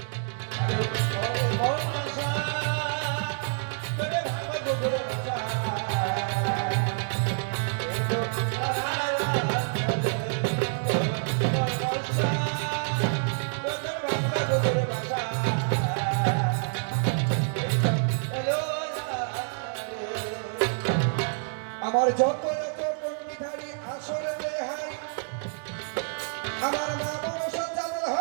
তোরে ভাঙব গোগর বাসা, আমার যত যত পণ্ডিতারি আসরে দেহাই আমার মা মনসা চাঁদের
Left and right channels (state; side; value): silent; left; digital silence